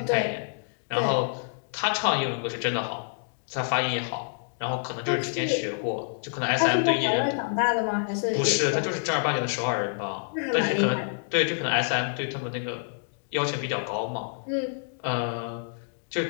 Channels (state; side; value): silent; right; digital silence